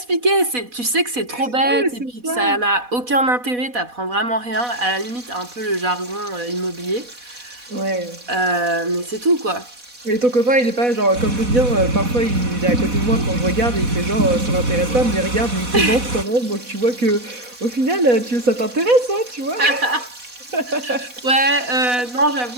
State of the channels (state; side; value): late; left; 4.1 ms